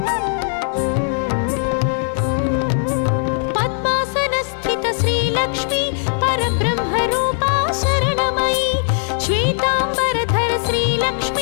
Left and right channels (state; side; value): silent; right; 65 dB below the other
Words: पद्मासनस्थित श्रीलक्ष्मी परब्रह्मरूपा शरणमयी श्वेताम्बरधर